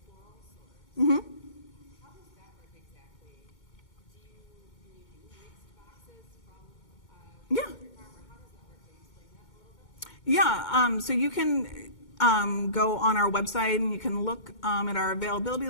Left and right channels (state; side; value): late; right; 2.2 ms